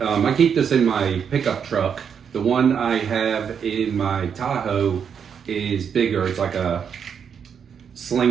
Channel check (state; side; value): quieter; left; 7.3 dB